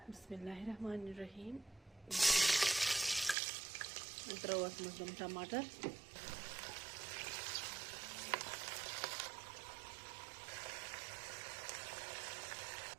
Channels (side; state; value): left; drops out; at 3.4 s